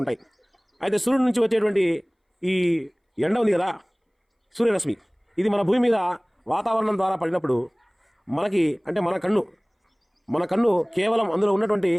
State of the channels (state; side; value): identical; both; correlation 1.00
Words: ఉంటాయి. అయితే సూర్యుడి నుంచి వచ్చేటువంటి ఈ ఎండ ఉంది కదా, సూర్యరశ్మి, ఇది మన భూమి మీద వాతావరణం ద్వారా పడినప్పుడు మనకి అంటే మన కన్ను కేవలం అందులో ఉన్నటువంటి